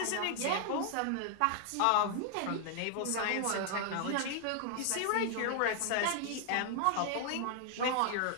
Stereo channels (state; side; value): different; both; correlation 0.00